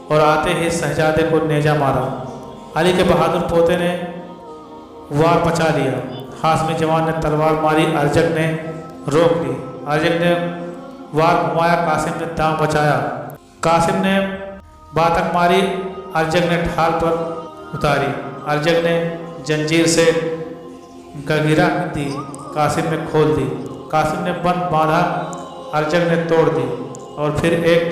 اور آتے ہی شہزادے کو نیزہ مارا۔ علی کے بہادر پوتے نے وار بچا لیا۔ ہاشمی جوان نے تلوار ماری، ارجک نے روک لی۔ ارجک نے وار گھمایا، قاسم نے داؤں بچایا۔ قاسم نے باتک ماری، ارجک نے ڈھال پر اتاری۔ ارجک نے جنجیر سے گگیرا دی، قاسم نے کھول دی۔ قاسم نے بند باندھا، ارجک نے توڑ دی اور پھر ایک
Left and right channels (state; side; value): identical; both; correlation 1.00